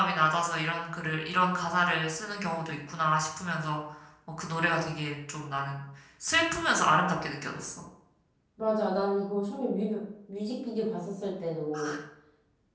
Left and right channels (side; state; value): both; identical; correlation 1.00